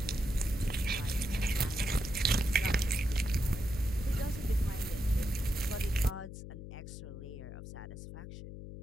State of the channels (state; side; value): noise; left; hum, 11 dB below the sound